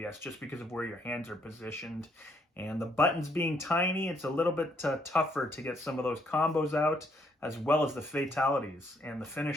just because of where your hands are positioned. And the buttons being tiny, it's a little bit tougher to get some of those combos out, as well as the fatalities and the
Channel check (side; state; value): both; normal; correlation 0.71